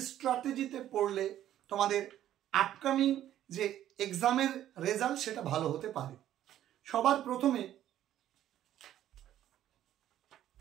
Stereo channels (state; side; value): quieter; left; 12.0 dB